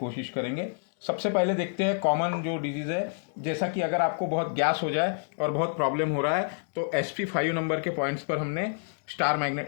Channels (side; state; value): right; silent; digital silence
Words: करेंगे। सबसे पहले देखते हैं कॉमन जो डिजीज़ है, जैसा कि अगर आपको बहुत गैस हो जाए और बहुत प्रॉब्लम हो रहा है तो SP5 नंबर के पॉइंट्स पर हमने स्टार